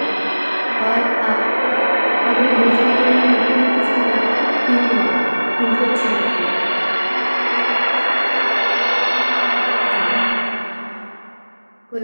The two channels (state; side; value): inverted; both; correlation -1.00